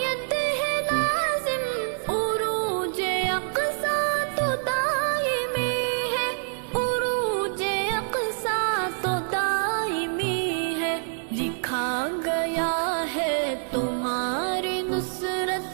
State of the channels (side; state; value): left; silent; digital silence